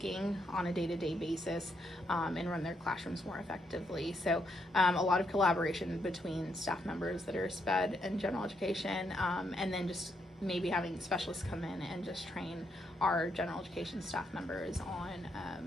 on a day-to-day basis, and run their classrooms more effectively. So a lot of collaboration between staff members that are SPED and general education, and then just maybe having specialists come in and just train our general education staff members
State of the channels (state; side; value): normal; both; correlation 0.77